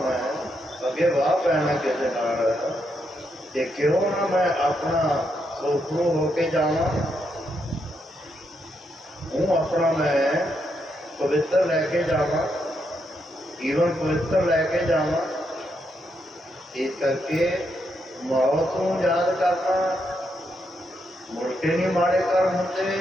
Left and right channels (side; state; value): both; normal; correlation 0.80